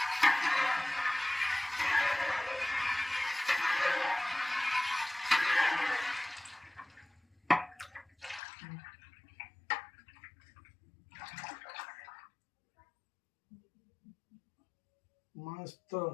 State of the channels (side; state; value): right; drops out; at 8.4 s